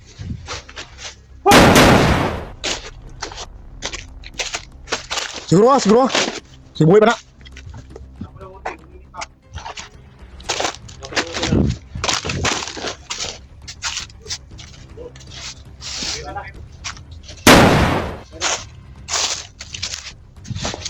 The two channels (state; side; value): identical; both; correlation 1.00